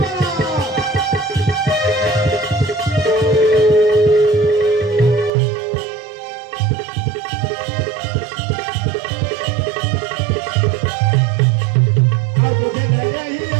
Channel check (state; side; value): drops out; left; at 5.3 s